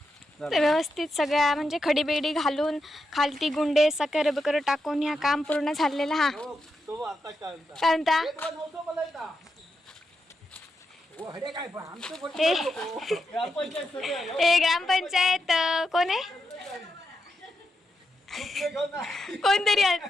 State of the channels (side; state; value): both; normal; correlation 0.85